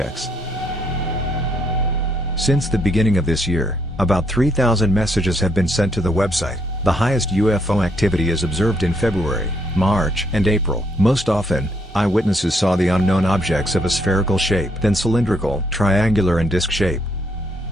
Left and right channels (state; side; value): normal; both; correlation 0.72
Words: Since the beginning of this year, about 3,000 messages have been sent to the website. The highest UFO activity is observed in February, March, and April. Most often, eyewitnesses saw the unknown objects of a spherical shape, then cylindrical, triangular, and disc shape.